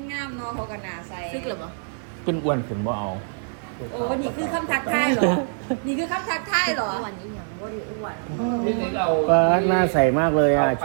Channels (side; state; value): left; silent; 60 dB below the other